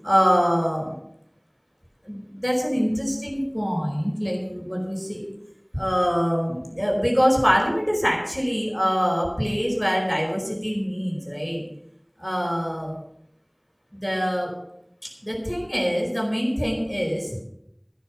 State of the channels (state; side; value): identical; both; correlation 1.00